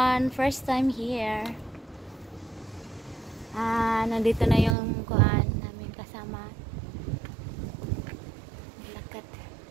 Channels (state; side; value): drops out; left; at 4.8 s